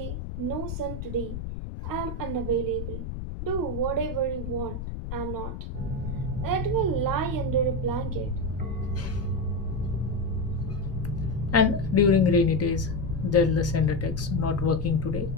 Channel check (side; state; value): left; noise; rumble, 6 dB below the sound